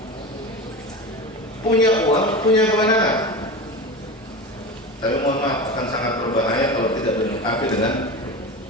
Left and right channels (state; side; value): normal; both; correlation 0.27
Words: punya uang, punya kewenangan. Tapi mohon maaf, akan sangat berbahaya kalau tidak dilengkapi dengan